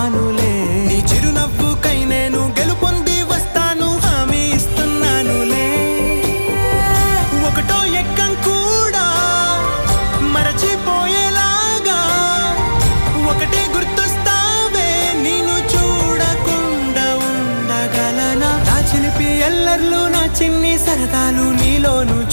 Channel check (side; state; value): both; inverted; correlation -1.00